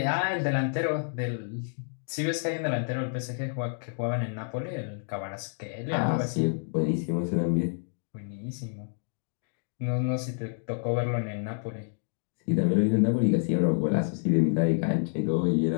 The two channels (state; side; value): silent; right; 59 dB below the other